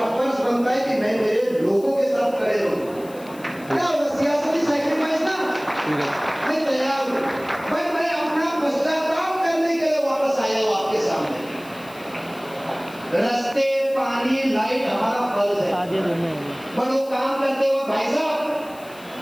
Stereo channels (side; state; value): left; noise; hiss, 22 dB below the sound